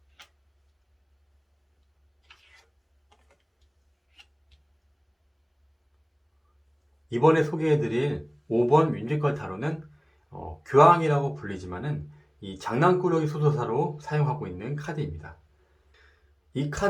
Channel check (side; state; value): both; identical; correlation 1.00